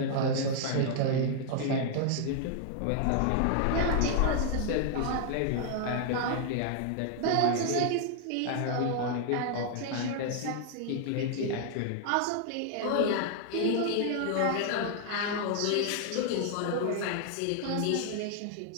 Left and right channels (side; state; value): both; different; correlation 0.00